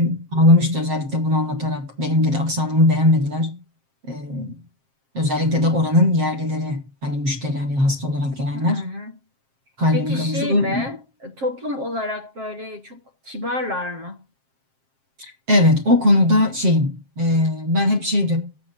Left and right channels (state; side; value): late; left; 7.5 ms